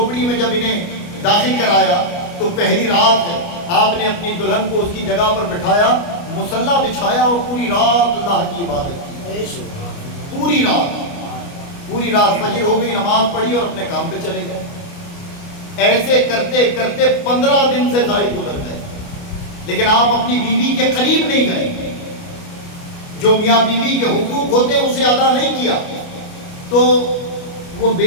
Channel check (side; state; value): right; late; 29 ms